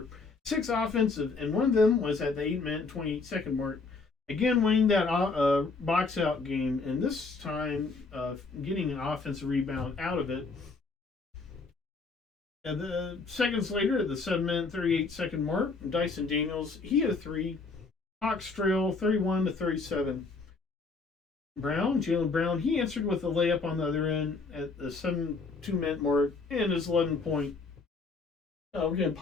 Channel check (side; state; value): right; quieter; 4.1 dB